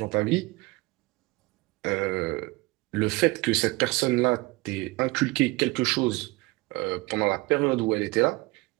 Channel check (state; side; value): quieter; left; 22.6 dB